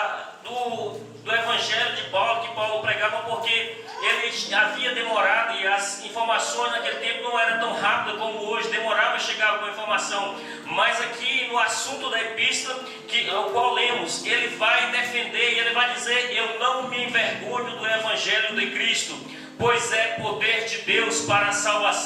do Evangelho de Paulo, que Paulo pregava, porque ele havia demorado e as informações naquele tempo não eram tão rápidas como hoje, demorava a chegar alguma informação. Mas aqui no assunto da epístola, o qual lemos, ele vai defender e ele vai dizer: eu não me envergonho do Evangelho de Cristo, pois é poder de Deus para a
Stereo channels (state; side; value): identical; both; correlation 1.00